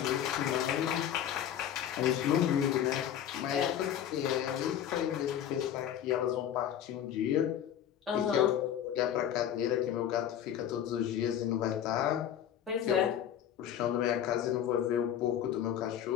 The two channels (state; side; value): quieter; right; 10.0 dB